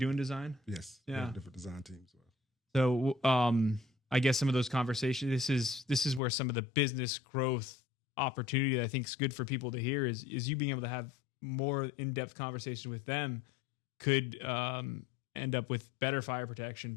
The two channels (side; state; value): right; drops out; at 6.2 s